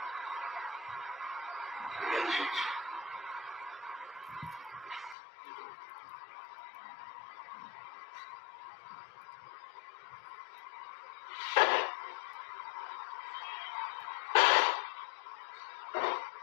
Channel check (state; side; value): drops out; right; at 5.2 s